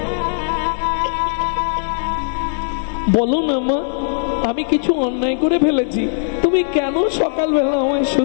বলো না মা, আমি কিছু অন্যায় করে ফেলেছি? তুমি কেন সকালবেলা আমায়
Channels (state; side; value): silent; right; digital silence